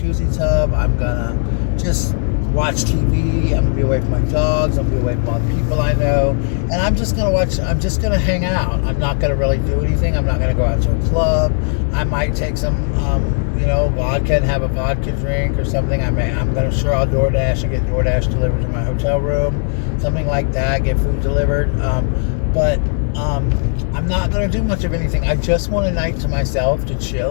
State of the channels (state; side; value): silent; right; 60 dB below the other